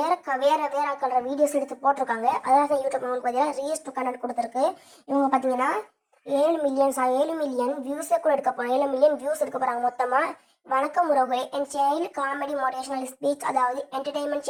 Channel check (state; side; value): identical; both; correlation 1.00